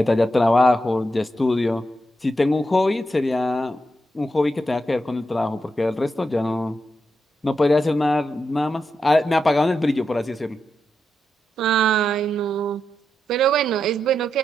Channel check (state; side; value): normal; both; correlation 0.86